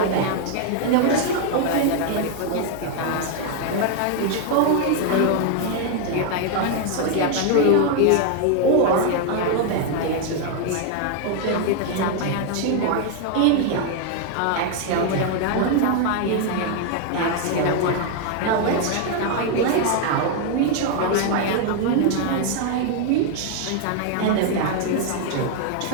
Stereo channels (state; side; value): different; both; correlation 0.00